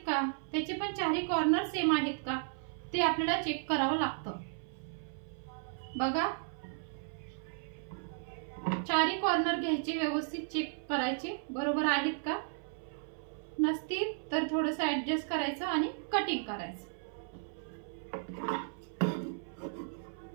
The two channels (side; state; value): left; silent; 55 dB below the other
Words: का, त्याचे पण चारही कॉर्नर सेम आहेत का ते आपल्याला चेक करावं लागतं. बघा चारही कॉर्नर घ्यायचे, व्यवस्थित चेक करायचे बरोबर आहेत का, नसतील तर थोडंसं ऍडजस्ट करायचं आणि कटिंग करायचं.